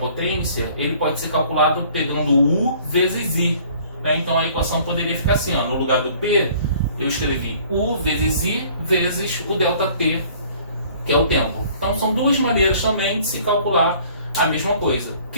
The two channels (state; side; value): inverted; both; correlation -0.54